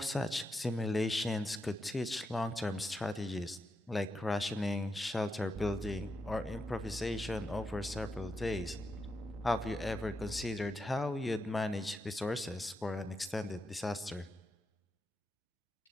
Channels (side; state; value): both; normal; correlation 0.85